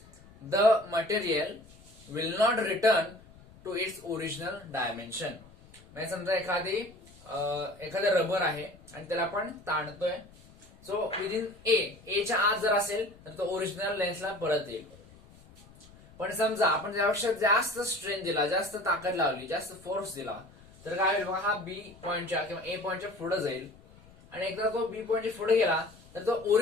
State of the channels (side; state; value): left; noise; rumble, 23 dB below the sound